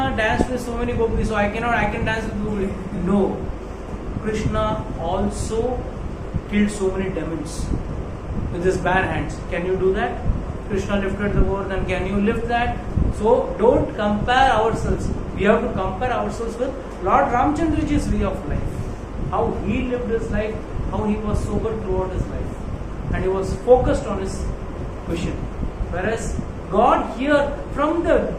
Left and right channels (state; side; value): identical; both; correlation 1.00